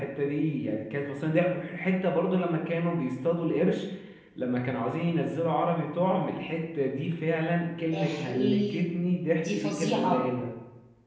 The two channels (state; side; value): identical; both; correlation 1.00